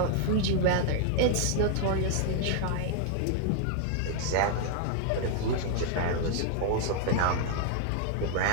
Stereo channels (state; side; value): different; both; correlation 0.00